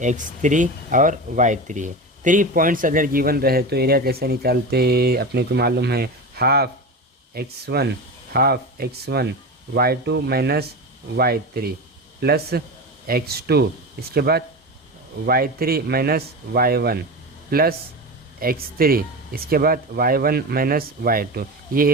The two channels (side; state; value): both; normal; correlation 0.25